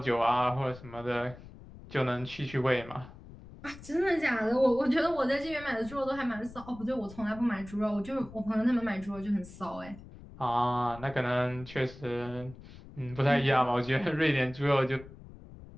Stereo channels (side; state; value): left; noise; rumble, 17 dB below the sound